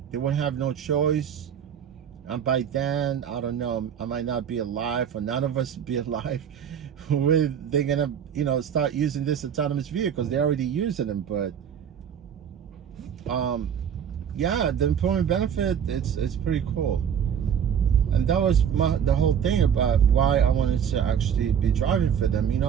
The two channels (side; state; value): left; quieter; 8.3 dB